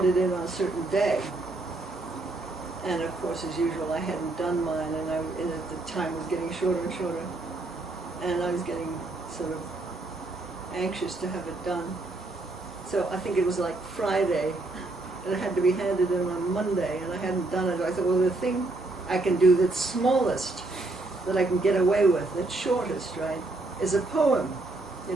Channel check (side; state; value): left; quieter; 3.0 dB